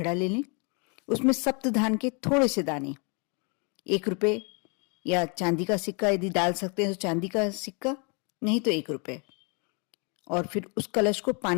ले लें। उसमें सप्तधान के थोड़े से दाने, 1 रुपये या चांदी का सिक्का यदि डाल सकते हैं तो चांदी का सिक्का, नहीं तो 1 रुपये, और फिर उस कलश को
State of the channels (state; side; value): quieter; right; 34.5 dB